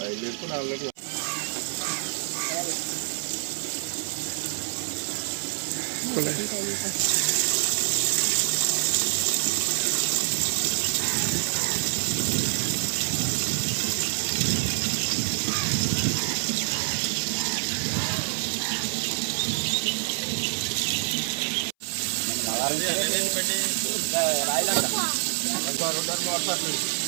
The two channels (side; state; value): left; silent; 60 dB below the other